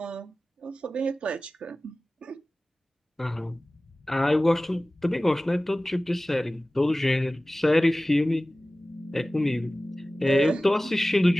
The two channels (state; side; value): normal; both; correlation 0.97